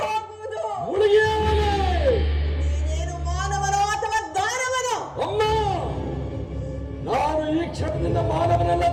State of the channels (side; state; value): both; identical; correlation 1.00